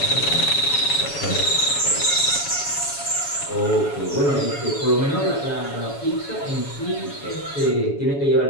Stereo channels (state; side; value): late; right; 7.1 ms